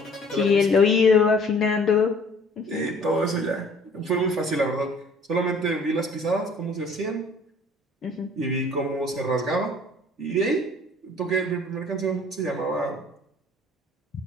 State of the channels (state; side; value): normal; both; correlation 0.53